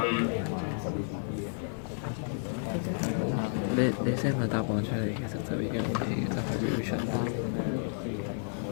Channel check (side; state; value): right; silent; digital silence